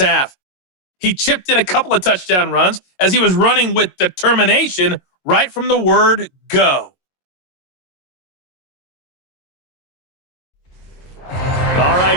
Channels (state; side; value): late; right; 22 ms